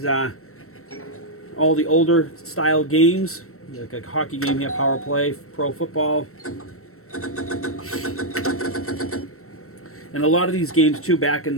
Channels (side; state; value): right; late; 0.63 ms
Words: all the older style games. Like a hockey game here, Power Play, Pro Football. And a lot of these games too, back in